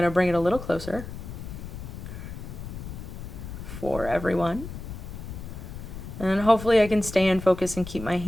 to bring it a little closer for everyone. And hopefully I can stay in focus and keep my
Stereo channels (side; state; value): left; noise; rumble, 10 dB below the sound